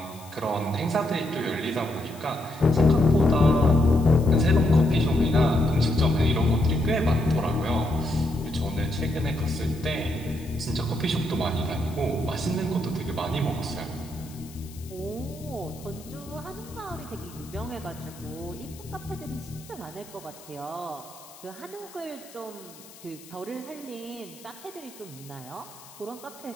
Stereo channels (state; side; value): noise; left; hiss, 20 dB below the sound